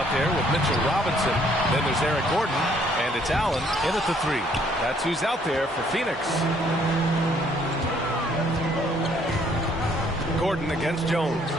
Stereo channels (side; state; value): both; normal; correlation 0.64